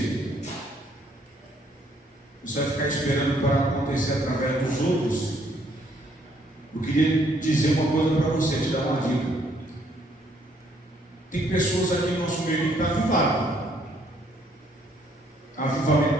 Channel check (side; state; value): both; normal; correlation 0.67